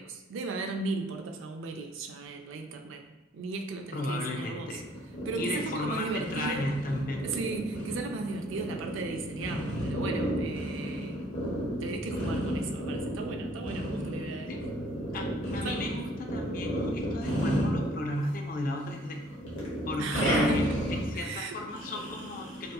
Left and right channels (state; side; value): normal; both; correlation 0.59